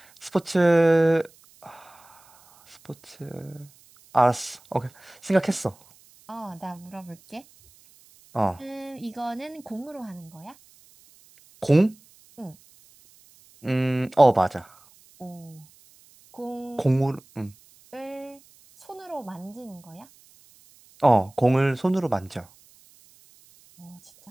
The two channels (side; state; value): right; noise; hiss, 28 dB below the sound